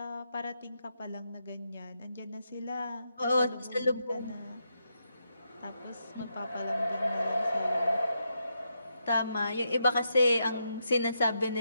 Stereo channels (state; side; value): inverted; both; correlation -0.82